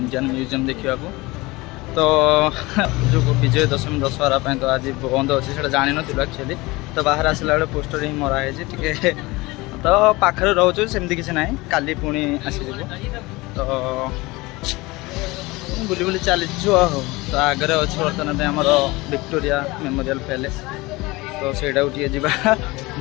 म्यूजियम देखा तो जो विजय दशमी दशहरा तो आज बंद अच्छे से जान नु एक्चुअली तो बाहर आसला बेले पोस्टर ही मराई टे तो पाखे रोचे सेमती किसी ना काली पुणी आसीज तो बुली बुली चलीचु तो आगे अच्छे बर्तमान आमर विक्टोरिया मेमोरियल पैलेस तो सहीटा गोटे जा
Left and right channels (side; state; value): right; quieter; 22.2 dB